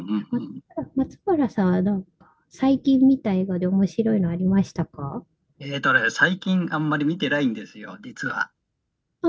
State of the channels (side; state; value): both; identical; correlation 1.00